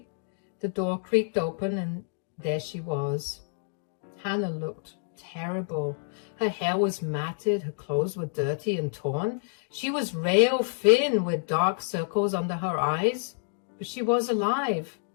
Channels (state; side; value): silent; right; digital silence